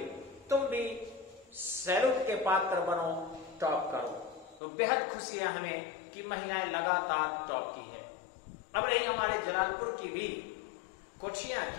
तुम भी सैल्यूट के पात्र बनो, टॉप करो। तो बेहद खुशी है हमें कि महिलाएं लगातार टॉप की है। अब रही हमारे जलालपुर की भी कोचियां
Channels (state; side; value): drops out; right; at 4.6 s